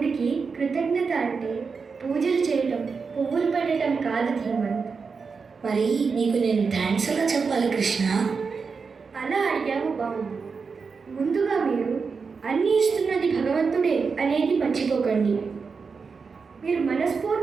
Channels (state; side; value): quieter; left; 5.1 dB